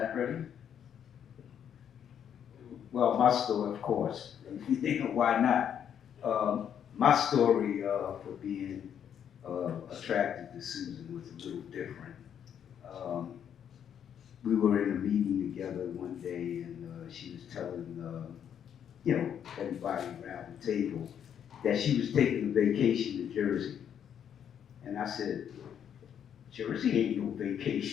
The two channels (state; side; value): quieter; right; 8.9 dB